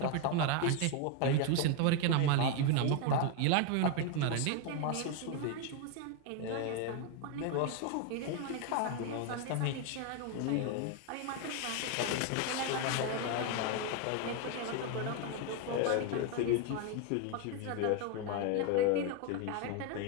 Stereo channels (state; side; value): different; both; correlation 0.01